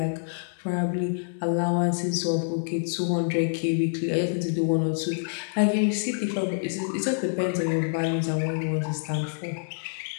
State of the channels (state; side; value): silent; right; digital silence